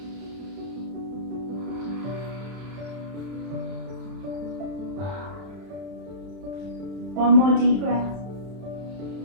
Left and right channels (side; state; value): left; late; 31 ms